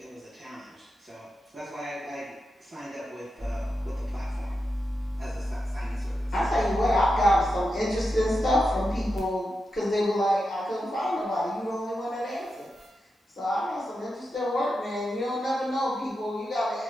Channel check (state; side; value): normal; both; correlation 0.88